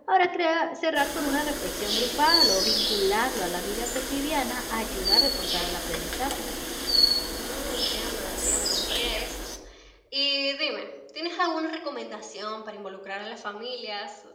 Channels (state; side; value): identical; both; correlation 1.00